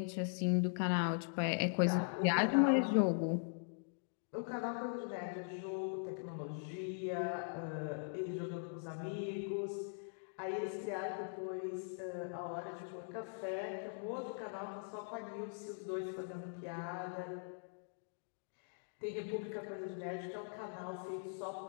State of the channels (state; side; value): silent; right; digital silence